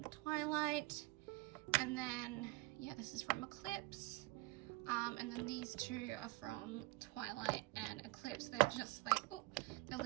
Twilight, and then yeah, this is from Eclipse. And then these 2 are from Twilight and Eclipse. They're just like, oh, they're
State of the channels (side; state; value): left; quieter; 22.3 dB